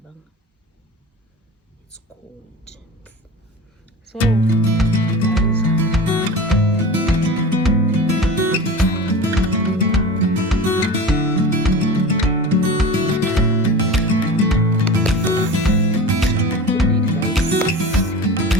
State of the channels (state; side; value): normal; both; correlation 0.33